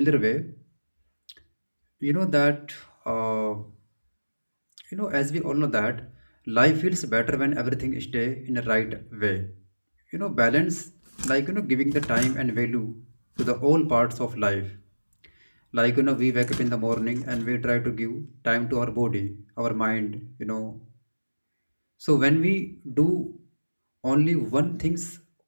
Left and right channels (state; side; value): inverted; both; correlation -1.00